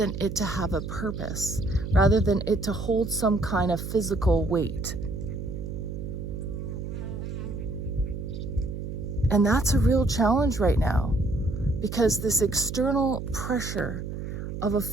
it to have a purpose, rather than it to hold some kind of physical weight. And that's a real challenge right now, because this external pressure of a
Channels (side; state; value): right; noise; hum, 6 dB below the sound